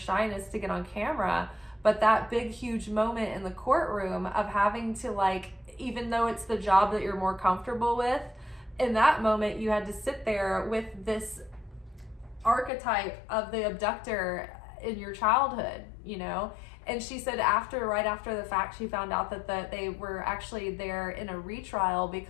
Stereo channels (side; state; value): right; drops out; at 12.7 s